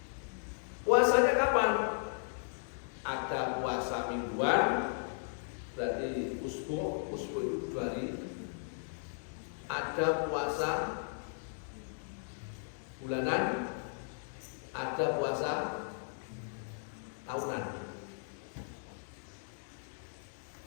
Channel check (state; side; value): silent; right; digital silence